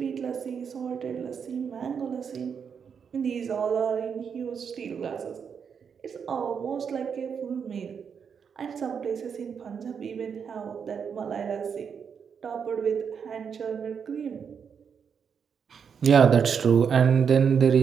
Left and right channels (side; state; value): left; quieter; 6.8 dB